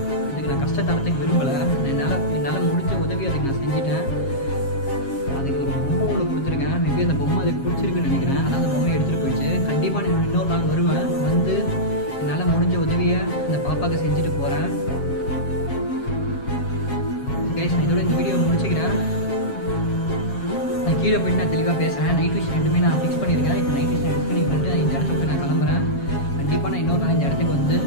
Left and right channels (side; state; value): right; late; 7.4 ms